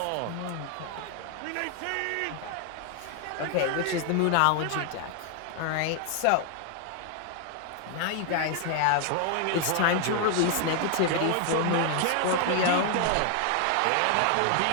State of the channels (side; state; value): both; different; correlation 0.00